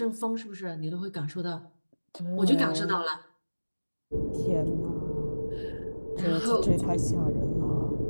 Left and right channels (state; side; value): inverted; both; correlation -1.00